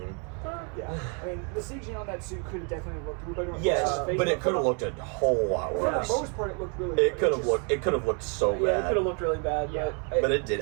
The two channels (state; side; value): quieter; left; 38.0 dB